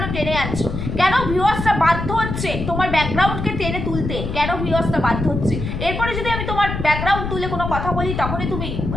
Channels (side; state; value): left; noise; rumble, 4 dB below the sound